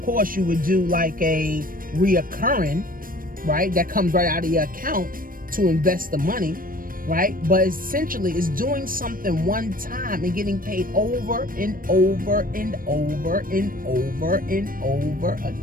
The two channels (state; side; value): late; left; 0.41 ms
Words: course, you would do like a reoccurring, right? That comes right out of your account to invest the money, right? But essentially, it's doing something one time and getting paid over and over and over and over and over